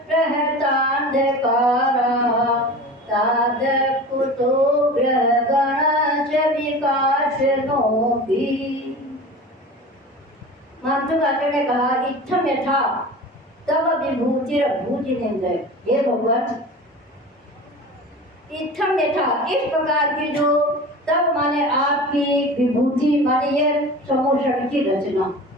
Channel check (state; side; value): normal; both; correlation 0.35